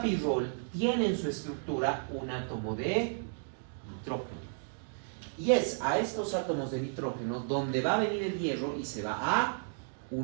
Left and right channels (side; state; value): left; silent; digital silence